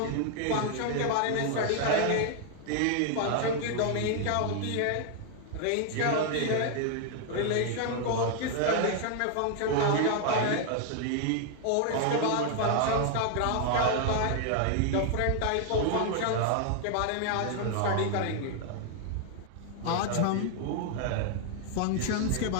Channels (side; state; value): both; different; correlation 0.00